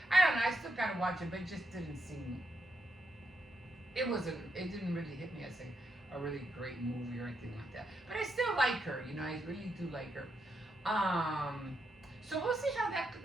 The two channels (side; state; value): both; normal; correlation 0.82